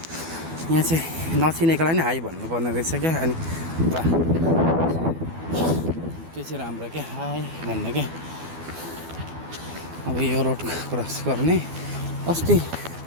यहाँ चाहिँ नचिनेकोलाई नि हाई भन्नुपर्ने रहेछ क्या। अनि त्यो चाहिँ राम्रो क्या, हाई भन्ने क्या। अब यो रोड क्रस गर्ने अस्ति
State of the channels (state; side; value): late; left; 12 ms